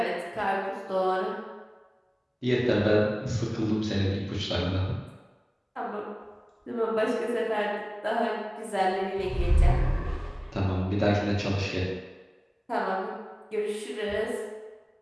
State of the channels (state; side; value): identical; both; correlation 1.00